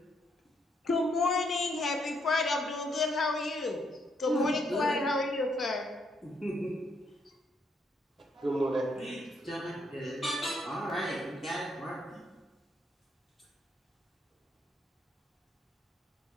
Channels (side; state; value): both; normal; correlation 0.74